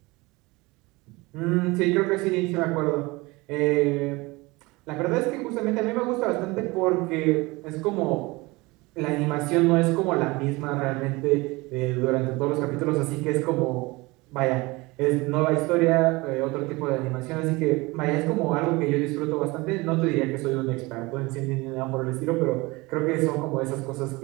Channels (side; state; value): left; quieter; 23.2 dB